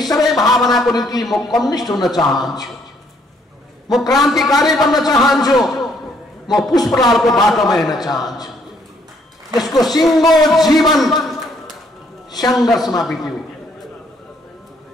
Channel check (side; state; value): both; normal; correlation 0.68